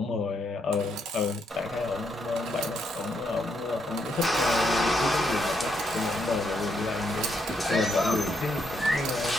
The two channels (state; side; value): normal; both; correlation 0.77